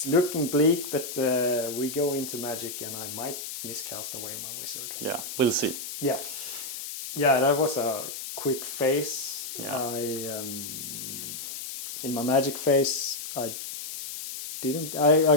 looking bleak, but we go into magic, and I might miscast away my wizard. Yeah, we'll see. Yeah. Yeah, that was a quick phase. Yeah. In my magic phase, I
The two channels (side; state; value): left; noise; hiss, 8 dB below the sound